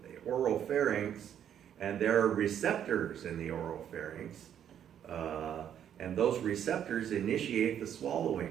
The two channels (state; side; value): quieter; left; 9.6 dB